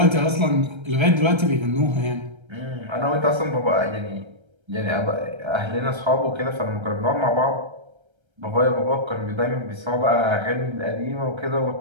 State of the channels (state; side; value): late; left; 1.3 ms